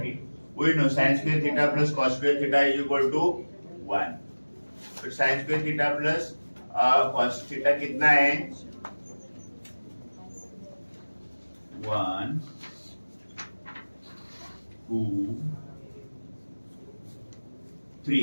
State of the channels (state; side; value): inverted; both; correlation -1.00